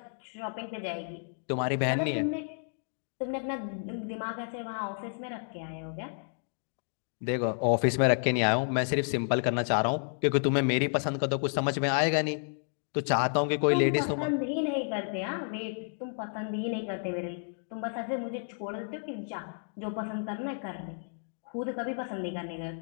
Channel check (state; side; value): silent; right; digital silence